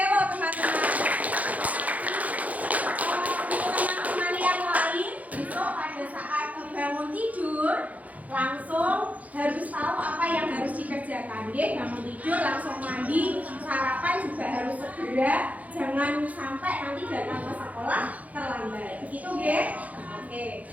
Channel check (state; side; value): late; left; 0.073 ms